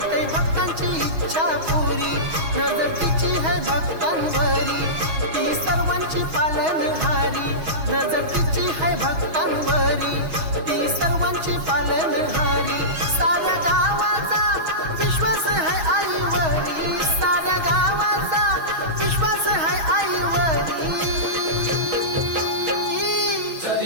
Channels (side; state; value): left; late; 6.3 ms